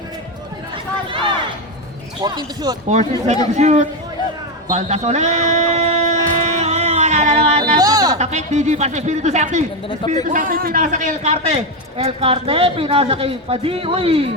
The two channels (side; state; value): both; normal; correlation 0.10